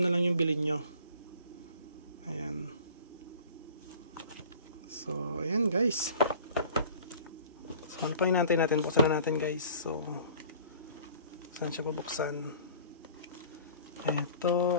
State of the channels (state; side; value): inverted; both; correlation -0.47